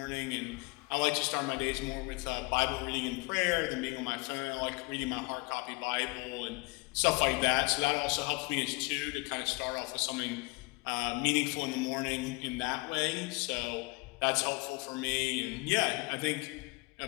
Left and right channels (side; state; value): right; quieter; 27.1 dB